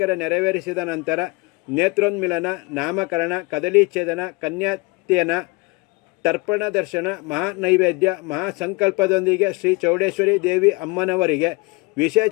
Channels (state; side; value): quieter; right; 25.1 dB